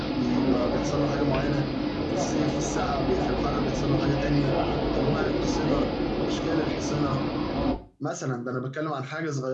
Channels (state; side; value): identical; both; correlation 1.00